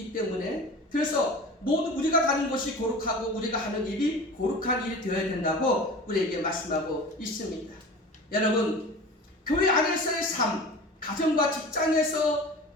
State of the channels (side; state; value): both; normal; correlation 0.36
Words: 때문에, 그래서 모두 우리가 가는 곳이 거룩하고 우리가 하는 일이 거룩한 일이 되어야 된다고 우리에게 말씀하고 있습니다. 여러분, 교회 안에서의 삶, 가정과 직장에서